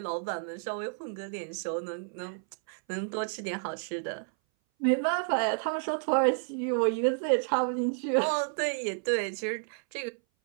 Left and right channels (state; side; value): silent; left; 57 dB below the other